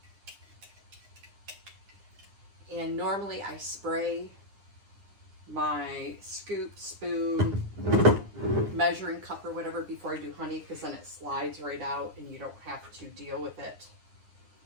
And normally I spray my scoop, spoon, measuring cup or whatever before I do honey, because then it slides right out and you don't have to deal with it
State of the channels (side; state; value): left; late; 9.8 ms